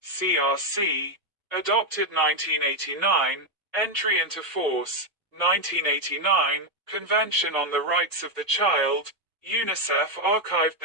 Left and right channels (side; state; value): both; normal; correlation 0.03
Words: CRC, adopted 1989, entry into force, 1989, Convention on the Rights of the Child, UNICEF archived